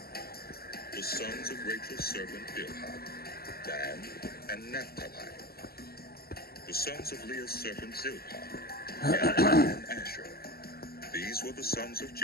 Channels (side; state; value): right; late; 0.45 ms